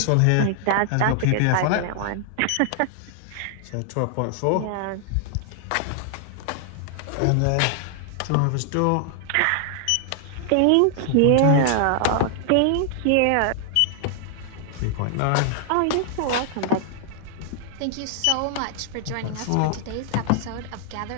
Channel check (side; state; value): both; different; correlation 0.00